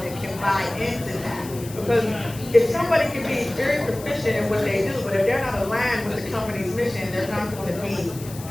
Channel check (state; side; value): noise; left; hiss, 16 dB below the sound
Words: and can buy into that. Because if somebody can be very proficient in what they do, but if they're not aligned with the company's mission, they're not going to be